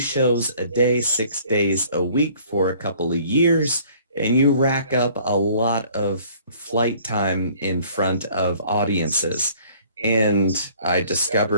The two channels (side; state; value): both; inverted; correlation -0.55